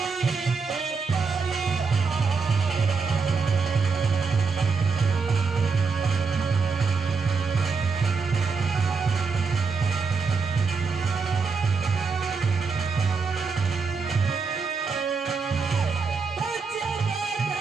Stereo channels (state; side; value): quieter; left; 4.9 dB